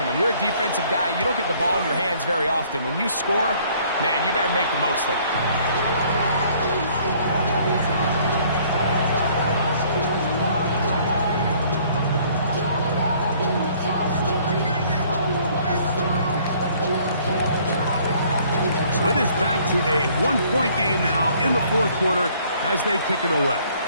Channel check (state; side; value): inverted; both; correlation -0.59